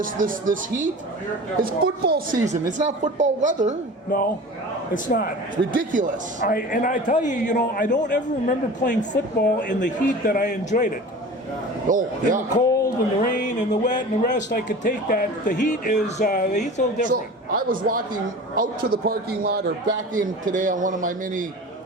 heat. It's football season. It's not football weather. No, it's not. It's ridiculous. I tell you, I don't ever remember playing football in the heat that I enjoyed it. Oh, In the yeah. cold and the rain and the wet and the rest, I could take that. The heat's a little different. So I was walking out to the parking lot or back in today on one of my many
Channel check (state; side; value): normal; both; correlation 0.37